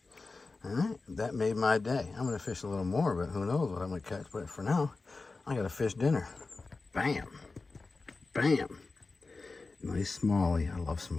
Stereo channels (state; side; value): quieter; right; 3.8 dB